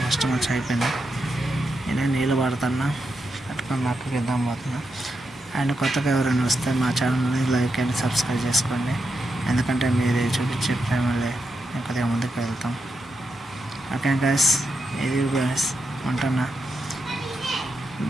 ఫస్ట్ మంచం అయిపోయింది. నేను నీళ్ళు పడుతున్నా, పట్టుకొని మా అక్కకి ఇద్దాం పోతున్నా. అండ్ కొత్తగా ఎవరైనా వస్తే మా ఛానల్ని లైక్ అండ్ సబ్స్క్రైబ్ చేసుకోండి, ఎందుకంటే మీరు చూపించే ప్రేమలే నేను కొద్దిగా ముందుకు వెళ్తాం. ఓకే గాయస్, ఇది గాయస్, ఉంటున్నా.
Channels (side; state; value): both; normal; correlation 0.85